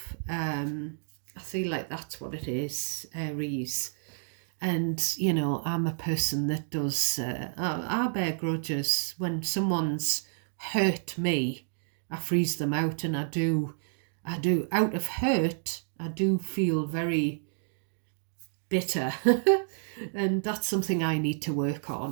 I feel like that's what it is, Aries. And, I'm a person that does, I bear grudges. When someone's hurt me, I freeze them out, and out of hurt, I do feel very bitter. And that's something I need to work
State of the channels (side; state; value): left; silent; digital silence